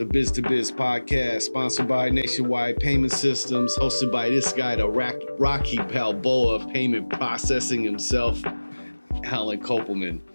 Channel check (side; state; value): both; inverted; correlation -1.00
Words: Biz to Biz podcast, sponsored by Nationwide Payment Systems, hosted by this guy, the Rocky Balboa of payment processing himself, Alan Kopelman.